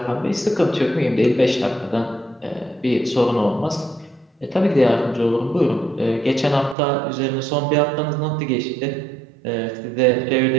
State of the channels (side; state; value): left; drops out; at 6.8 s